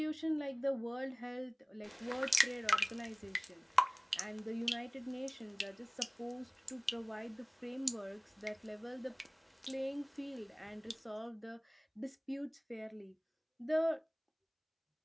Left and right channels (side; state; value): both; identical; correlation 1.00